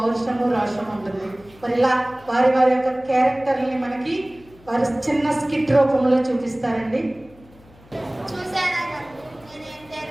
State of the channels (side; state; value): left; noise; hum, 25 dB below the sound